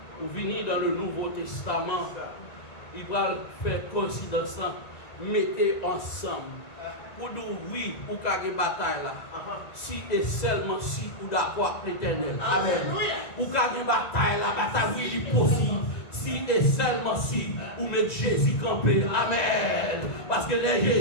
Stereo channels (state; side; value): late; right; 1.9 ms